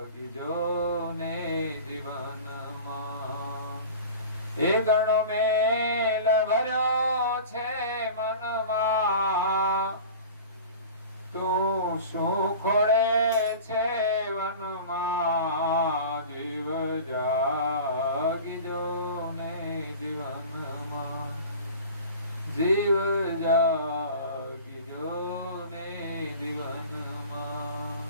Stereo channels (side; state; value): both; inverted; correlation -0.38